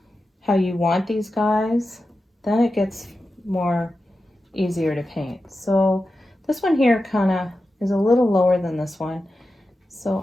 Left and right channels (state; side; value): normal; both; correlation 0.91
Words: how you want these guys, then it gets more easier to paint. So this one here kind of is a little lower than this one. So